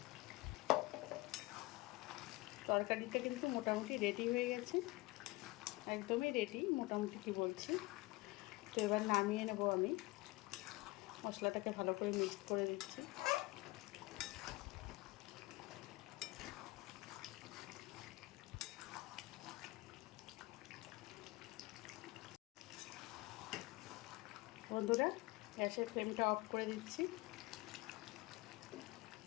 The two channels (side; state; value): right; quieter; 21.7 dB